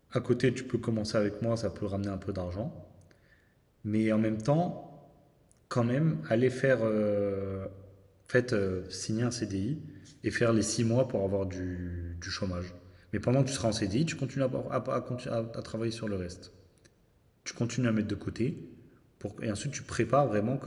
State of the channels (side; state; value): both; identical; correlation 1.00